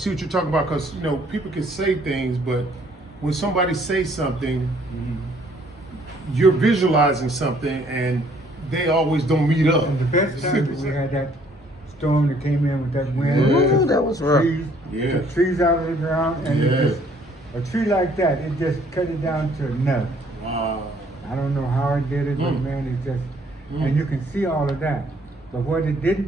what you're talking about. Because, people can say things, but when somebody says something, you're visualizing something and they always don't meet up. And the best time we had that storm that came in with that wind. Ooh, that was rough. Took trees out of the ground, and it just, a tree like that, it just cut it down to a nub. Wow. I don't know how it did it, but man, it just, and you can see all of that. But what it didn't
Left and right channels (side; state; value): both; normal; correlation 0.62